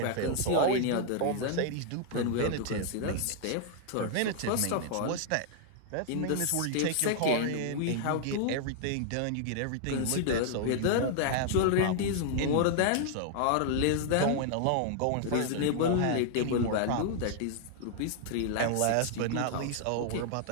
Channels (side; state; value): both; different; correlation 0.00